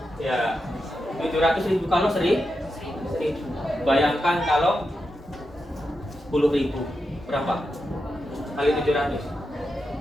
Ya. 700.000 kalau 1.000. Bayangkan kalau 10.000. Berapa? Kali 700.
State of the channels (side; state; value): both; normal; correlation 0.88